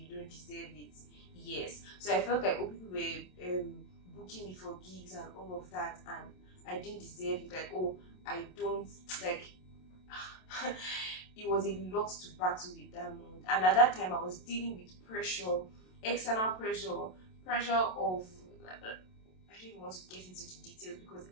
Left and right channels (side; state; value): right; late; 27 ms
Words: don't deserve it. Yes. So I felt like people were booking me for gigs and all of that, and I didn't deserve it. Like, oh, I don't, like, it was a lot to battle with that moment. And at that time, I was dealing with pressure, external pressure of, I don't even want to get into the details because